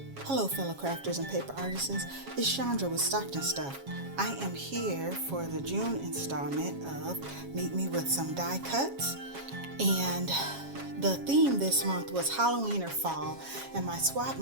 Hello fellow crafters and paper artisans, it's Chandra with Stockton Stuff. I am here for the June installment of Meet Me with Some Die Cuts, and the theme this month was Halloween or Fall, and my swap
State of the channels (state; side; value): late; left; 7.3 ms